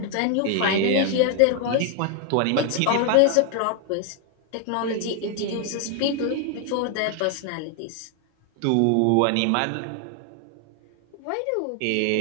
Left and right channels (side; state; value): both; different; correlation 0.00